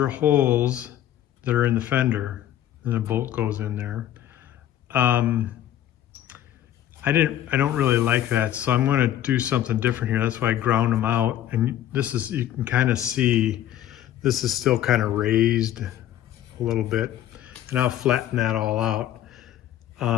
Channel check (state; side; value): quieter; right; 11.8 dB